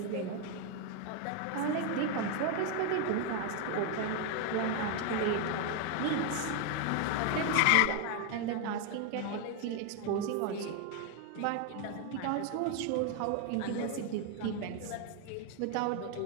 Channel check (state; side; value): different; both; correlation 0.01